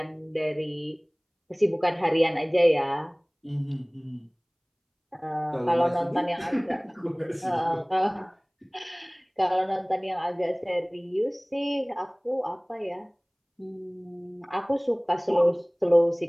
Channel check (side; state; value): both; identical; correlation 1.00